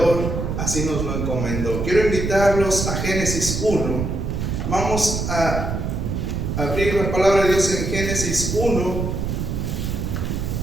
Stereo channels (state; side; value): noise; right; rumble, 2 dB below the sound